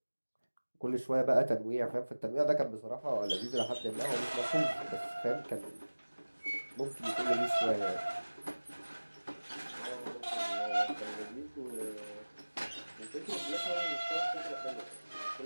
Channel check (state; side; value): inverted; both; correlation -1.00